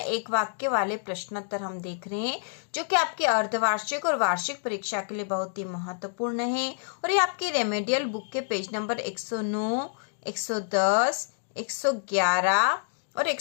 वाक्य वाले प्रश्नोत्तर हम देख रहे हैं जो कि आपकी अर्धवार्षिक और वार्षिक परीक्षा के लिए बहुत ही महत्वपूर्ण है। और ये आपकी रेमेडियल बुक के पेज नंबर 109, 110, 111 और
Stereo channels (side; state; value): right; silent; digital silence